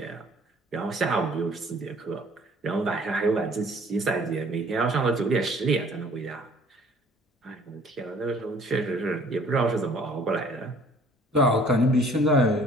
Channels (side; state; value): both; normal; correlation 0.55